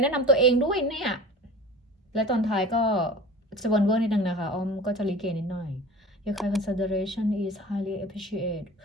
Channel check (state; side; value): normal; both; correlation 0.39